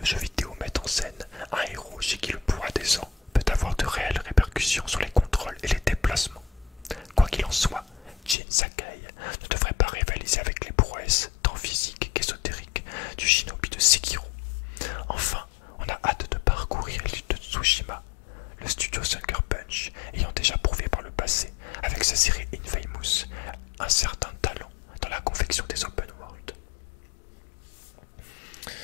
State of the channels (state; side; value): drops out; right; at 8.3 s